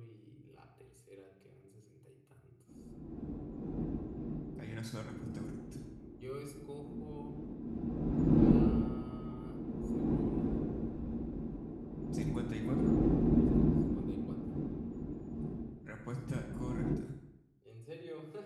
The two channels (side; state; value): both; identical; correlation 1.00